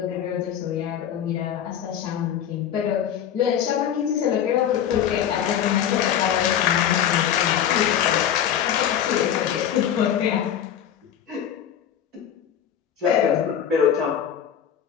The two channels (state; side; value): quieter; right; 9.5 dB